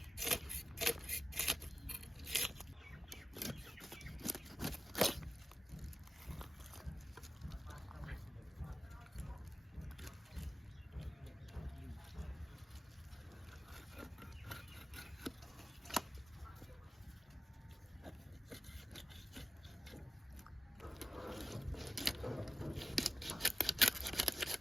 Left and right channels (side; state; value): both; normal; correlation 0.93